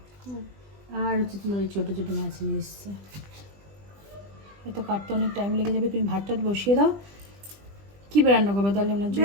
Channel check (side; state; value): left; late; 20 ms